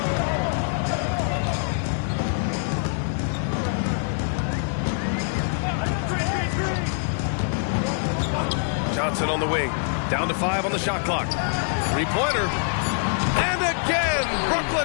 Johnson on the wing. Down to 5 on the shot clock. 3-pointer. And again,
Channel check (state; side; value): silent; right; 62 dB below the other